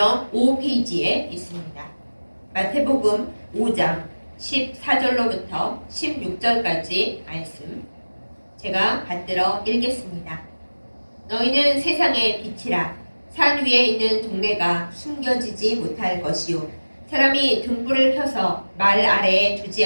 5페이지에 있습니다. 마태복음 5장 14절로부터 16절까지 말씀 제가 받들어 읽겠습니다. 너희는 세상의 빛이라. 산 위에 있는 동네가 숨겨지지 못할 것이요 사람이 등불을 켜서 말 아래에 두지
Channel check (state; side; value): inverted; both; correlation -1.00